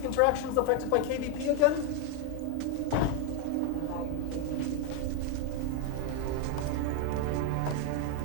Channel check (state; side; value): different; both; correlation 0.01